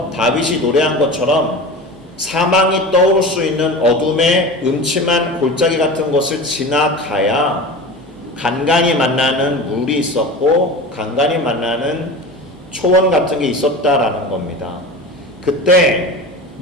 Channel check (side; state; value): both; normal; correlation 0.32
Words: 다윗이 노래한 것처럼 사망이 떠오를 수 있는 어둠의 음침한 골짜기 같은 곳을 지나가야 간간히 만나는 물이 있었고 간간히 만나는 초원 같은 게 있었다라는 겁니다. 그때